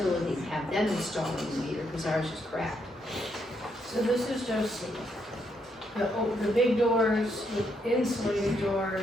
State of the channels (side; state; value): both; normal; correlation 0.77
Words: and have them install a new meter, because ours is cracked. So this is just the big doors, the insulated